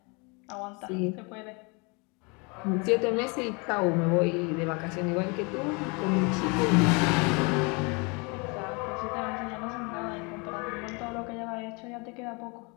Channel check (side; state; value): right; quieter; 30.5 dB